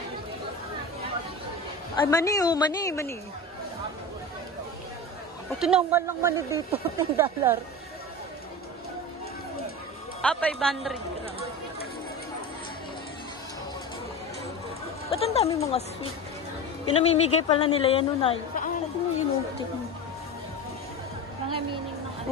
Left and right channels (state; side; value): normal; both; correlation 0.27